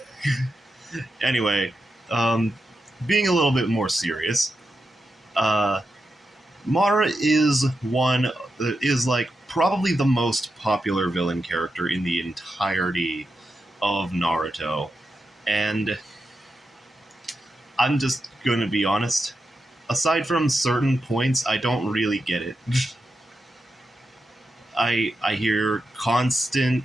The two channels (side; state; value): both; normal; correlation 0.88